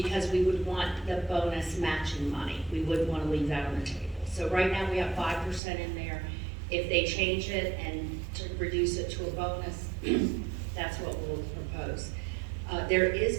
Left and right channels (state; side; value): drops out; left; at 5.6 s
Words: we would want the bonus matching money. We wouldn't want to leave that on the table. So right now we have 5% in there. If they change it and to reduce it to a bonus, that's what we'll propose. There is